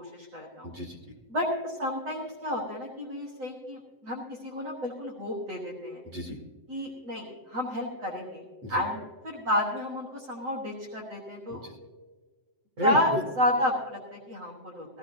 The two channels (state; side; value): late; left; 7.8 ms